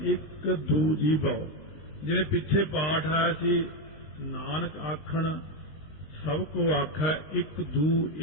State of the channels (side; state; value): right; late; 19 ms